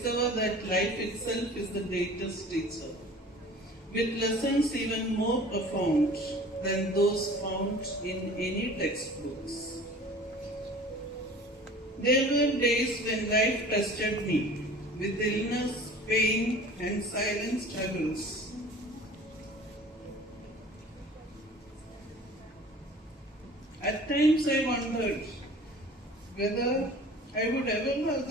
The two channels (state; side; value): normal; both; correlation 0.44